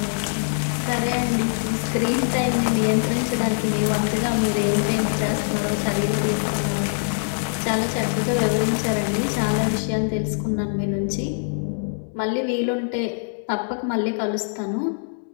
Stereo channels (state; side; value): silent; right; digital silence